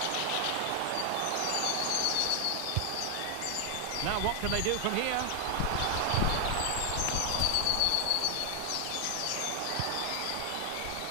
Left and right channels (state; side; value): different; both; correlation 0.00